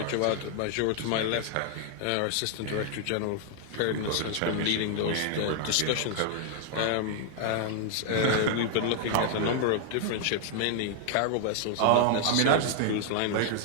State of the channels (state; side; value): different; both; correlation 0.00